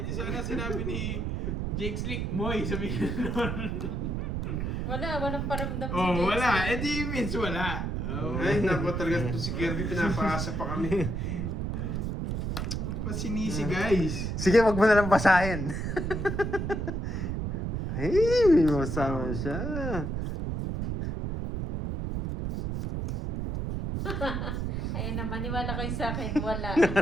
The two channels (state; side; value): noise; right; rumble, 2 dB below the sound